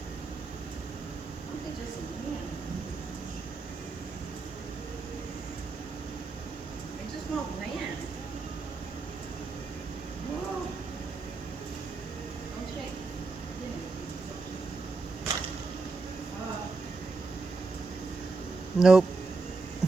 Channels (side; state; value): left; quieter; 3.9 dB